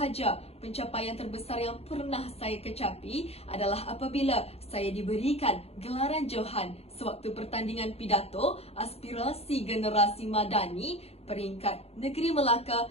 pencapaian terbesar yang pernah saya kecapi adalah apabila saya diberikan gelaran Johan sewaktu pertandingan pidato aspirasi generasi madani peringkat Negeri Melaka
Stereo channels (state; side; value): late; right; 0.29 ms